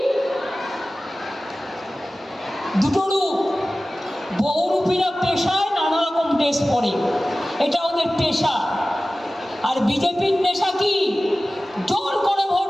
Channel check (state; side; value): normal; both; correlation 0.96